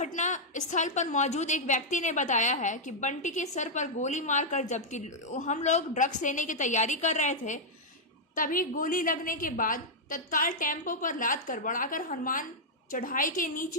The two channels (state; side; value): normal; both; correlation -0.05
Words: स्थल पर मौजूद एक व्यक्ति ने बताया है कि बंटी के सर पर गोली मारकर जबकि हम लोग ड्रग्स लेने की तैयारी कर रहे थे, तभी गोली लगने के बाद तत्काल टेम्पो पर लाद कर बढ़ाकर हनुमान चढ़ाई के